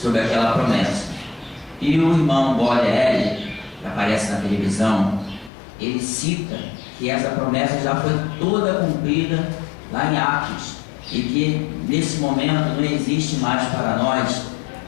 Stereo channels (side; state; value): right; drops out; at 5.5 s